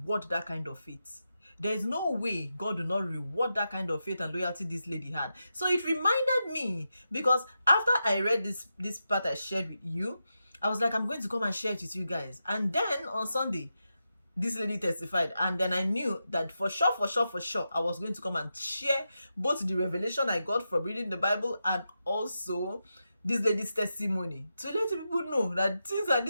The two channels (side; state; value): both; inverted; correlation -0.88